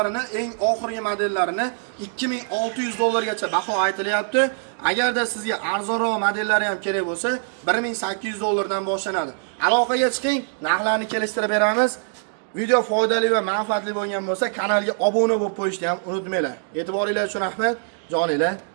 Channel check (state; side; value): silent; left; digital silence